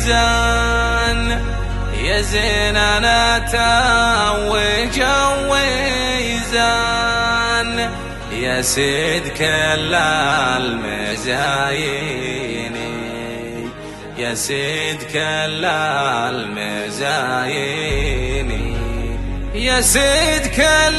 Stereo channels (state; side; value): identical; both; correlation 1.00